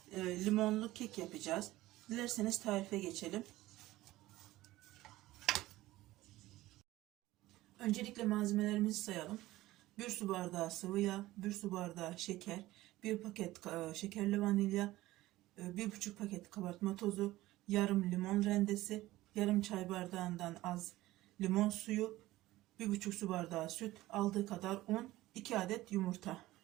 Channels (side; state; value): left; quieter; 17.1 dB